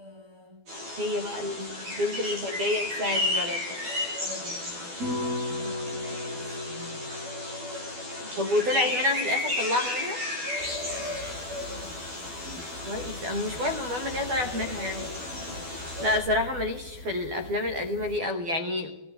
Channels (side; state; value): left; late; 12 ms